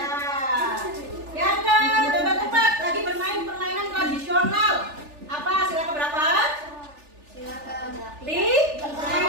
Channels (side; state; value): left; late; 3.4 ms